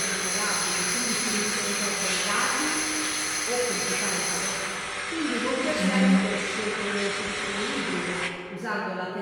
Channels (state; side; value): identical; both; correlation 1.00